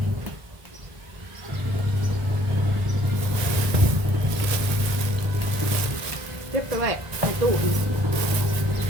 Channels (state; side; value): late; left; 1.5 ms